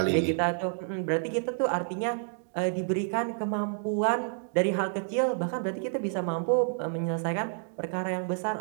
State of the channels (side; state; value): left; silent; digital silence